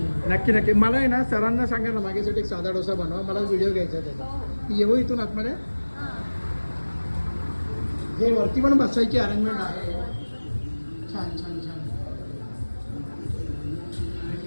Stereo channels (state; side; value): inverted; both; correlation -1.00